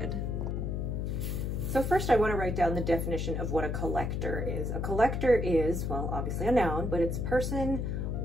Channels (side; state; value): left; noise; hum, 1 dB below the sound